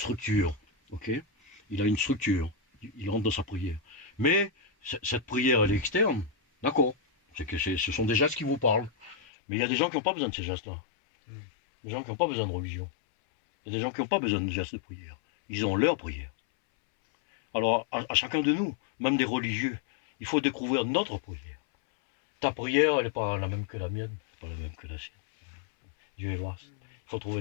ok? Il a une structure, il rentre dans sa prière. Mais cette prière, elle est externe, d'accord? C'est que ce sont des gestes qui vous parlent. Mais il y a des gens qui n'ont pas besoin de ces gestes-là. Des gens qui n'ont pas besoin de religion. Il y a des gens qui n'ont pas besoin de gestes de prière. Ils ont leur prière. Alors, à chacun de nous, même des religieux, il faut découvrir notre prière. Ta prière, elle n'est pas la même que la mienne, pas la même que la sienne. Dieu est vaste. Il faut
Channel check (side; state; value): right; drops out; at 9.2 s